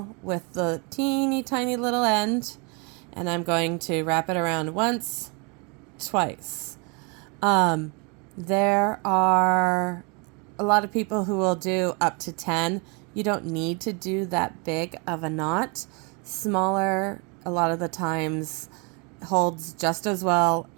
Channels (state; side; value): quieter; left; 32.6 dB